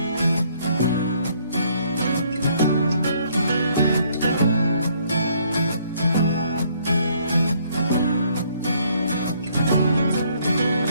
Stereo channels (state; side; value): inverted; both; correlation -0.65